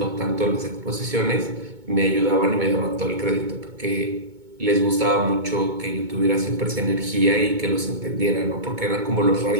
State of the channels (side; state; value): left; late; 2.2 ms